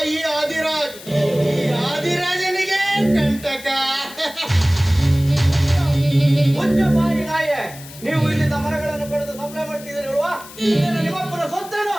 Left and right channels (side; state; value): left; noise; hiss, 17 dB below the sound